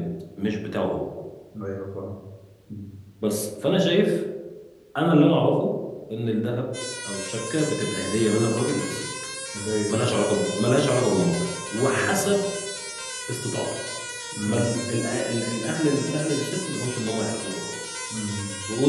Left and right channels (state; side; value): identical; both; correlation 1.00